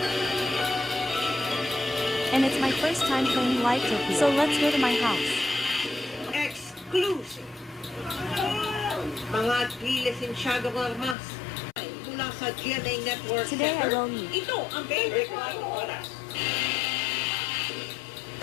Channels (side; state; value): right; drops out; at 11.2 s